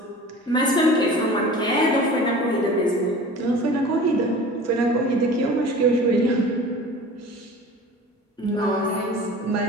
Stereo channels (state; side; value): normal; both; correlation 0.40